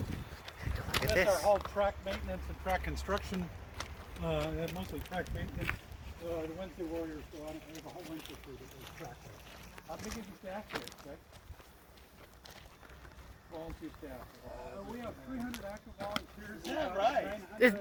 our whole track maintenance and track construction. Mostly track maintenance. The Wednesday Warriors go on and we have a whole winter crew that does track there. How big is the staff here, Rick? Volunteer staff. We have 300 active volunteers. Is that right?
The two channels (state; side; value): identical; both; correlation 1.00